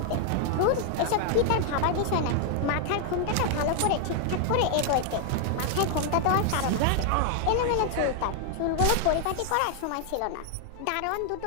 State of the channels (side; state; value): both; different; correlation 0.00